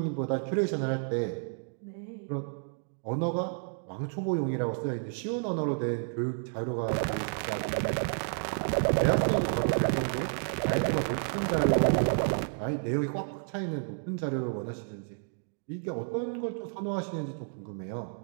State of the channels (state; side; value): silent; left; 57 dB below the other